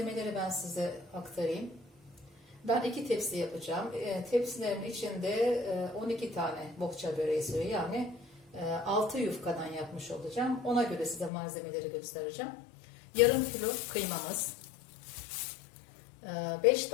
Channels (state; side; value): drops out; right; at 11.3 s